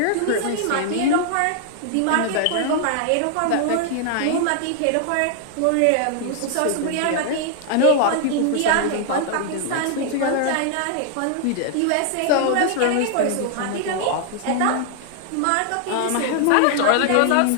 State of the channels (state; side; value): different; both; correlation 0.00